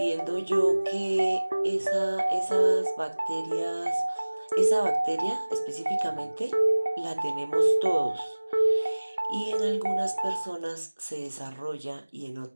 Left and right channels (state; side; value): inverted; both; correlation -1.00